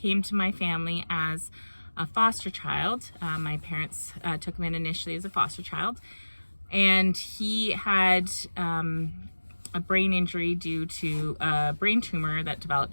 to my family as a foster child. My parents took him in initially as a foster child, and he had a brain injury due to a brain tumor that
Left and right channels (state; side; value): inverted; both; correlation -1.00